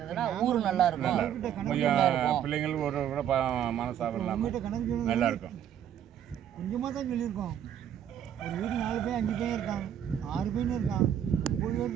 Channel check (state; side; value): quieter; left; 9.8 dB